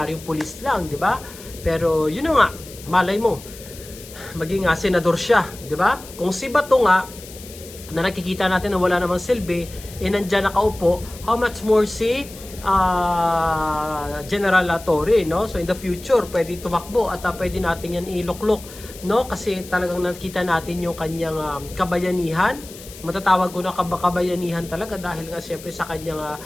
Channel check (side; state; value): left; noise; hiss, 17 dB below the sound